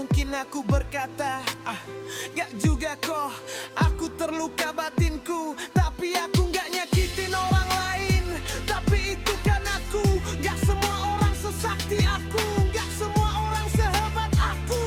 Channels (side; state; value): both; identical; correlation 1.00